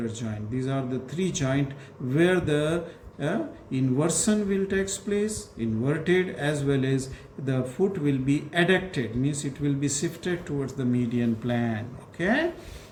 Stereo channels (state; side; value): identical; both; correlation 1.00